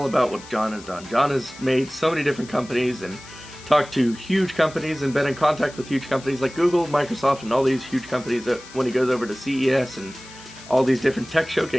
about what John has done. John has made so many different companies and talked to huge companies and been in contact with huge companies like Google, Microsoft, and all these huge companies that when he goes over to CES and all these different tech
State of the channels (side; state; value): left; noise; hiss, 19 dB below the sound